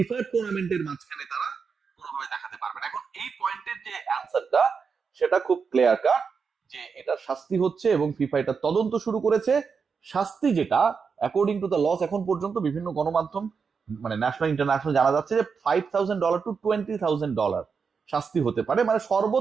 টুর্নামেন্টের মাঝখানে তারা কোনোভাবে দেখাতে পারবে না। এখন এই পয়েন্টের যে অ্যান্সারটা সেটা খুব ক্লিয়ার কাট, যে এটা শাস্তি হচ্ছে এবং ফিফা এটা তদন্ত শুরু করেছে। শাস্তি যেটা অ্যাকর্ডিং টু দ্য লস, এখন পর্যন্ত বিভিন্ন গণমাধ্যম মানে ন্যাশনাল ইন্টারন্যাশনাল জানা যাচ্ছে যে $5,000 to $20,000 শাস্তি হতে পারে। মানে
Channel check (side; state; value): left; quieter; 5.7 dB